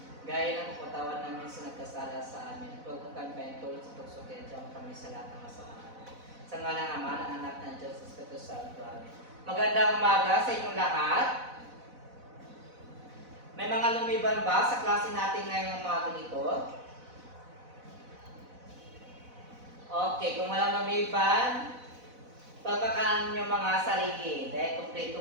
Gaya ng kapatawan namin sa nagkasala sa amin, huwag mo kami paintulot sa tukso, kaya diyan kami sa lahat ng masama. Sa ngalan ng Ama ng Anak ng Diyos, Espiritu Santo. Amen. Magandang umaga sa inyong lahat. May mga lumiban ba sa klase natin ngayong umaga nito? Okay, kung walang lumiban, papakaan nyo mga sarili dahil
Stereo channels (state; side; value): late; left; 4.0 ms